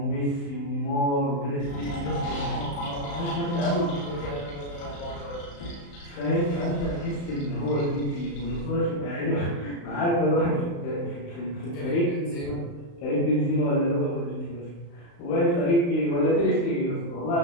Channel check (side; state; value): right; late; 35 ms